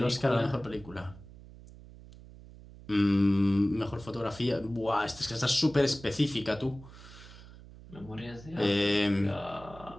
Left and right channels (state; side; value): noise; right; hum, 18 dB below the sound